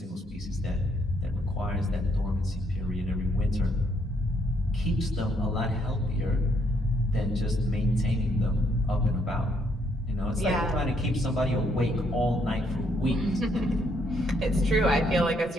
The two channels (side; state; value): both; normal; correlation 0.71